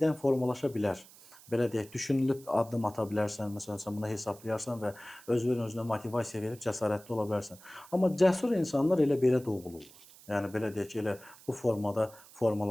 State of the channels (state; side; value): noise; right; hiss, 22 dB below the sound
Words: formalaşa bilər. Belə deyək, düşünülüb addım ata bilərsən, məsələn, sən buna hesablayarsan və özünə motivasiya verib cəsarətli ola bilərsən. Amma cəsur insanlar elə belə doğulurlar. Yəni belə deyək ki, elə bu formada